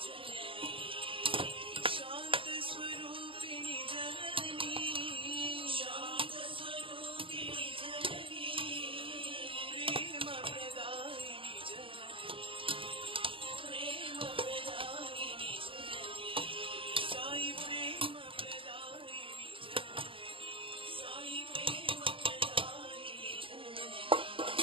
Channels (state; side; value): late; left; 0.25 ms